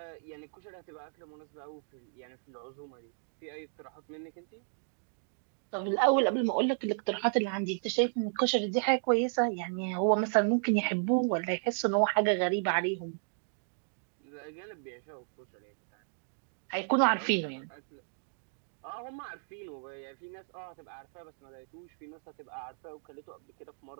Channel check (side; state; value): left; silent; digital silence